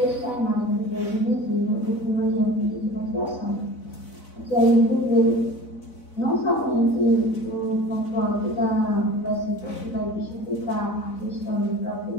é a imagem do Deus invisível, do primogênito de toda a criação. Que a gente vê não somente o conforto do versículo que vai justificar a questão do próprio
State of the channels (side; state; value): right; late; 4.0 ms